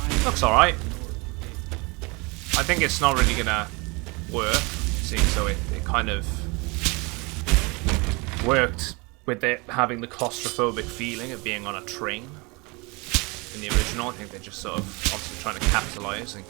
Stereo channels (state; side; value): quieter; left; 27.8 dB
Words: Looks alright. I think it's not really gonna work, seeing so it kind of worked with it having the claustrophobic feeling of being on a train. In the original, I think they're just sort of obviously trying to capitalize and